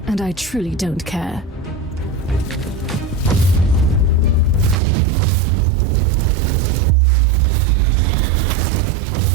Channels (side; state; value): left; drops out; at 4.8 s